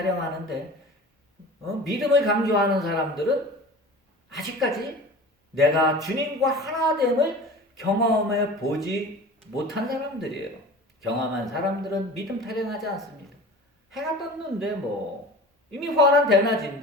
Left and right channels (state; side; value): normal; both; correlation 0.37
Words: 믿음을 강조하는 사람들은 아직까지 내가 주님과 하나됨을 경험해 보지 못한 사람들이에요. 경험한 사람들은 믿음 타령하지 않습니다. 해가 떴는데 이미 환한